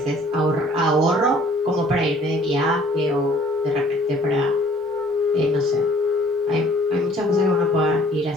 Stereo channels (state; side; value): normal; both; correlation 0.56